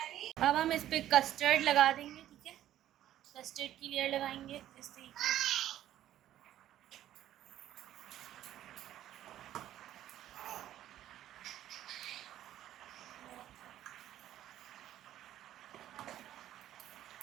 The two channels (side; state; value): left; quieter; 12.5 dB